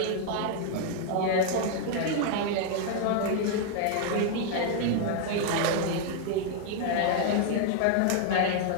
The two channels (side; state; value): both; different; correlation 0.00